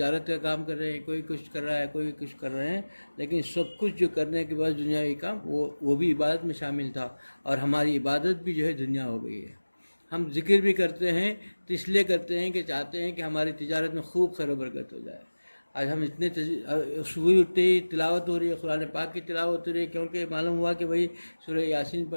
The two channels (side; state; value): both; inverted; correlation -1.00